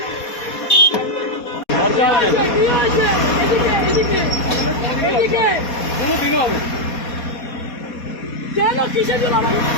কেন কিসের জন্য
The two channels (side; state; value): right; late; 4.2 ms